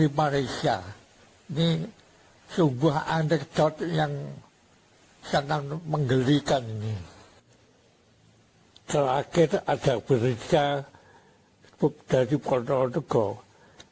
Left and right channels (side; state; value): both; identical; correlation 1.00